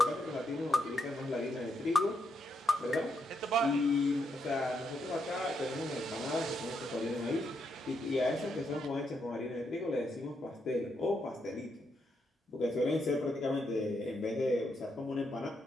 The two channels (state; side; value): normal; both; correlation 0.80